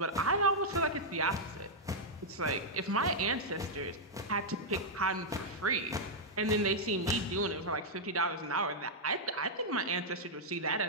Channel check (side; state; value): both; normal; correlation -0.05